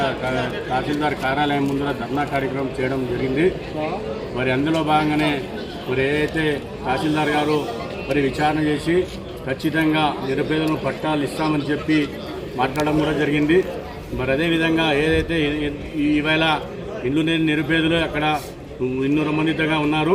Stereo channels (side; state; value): both; identical; correlation 1.00